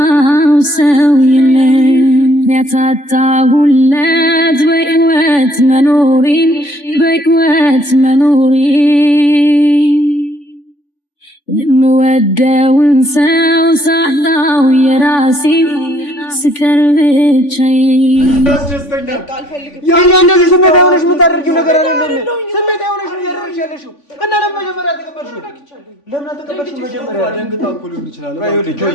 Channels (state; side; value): late; right; 3.5 ms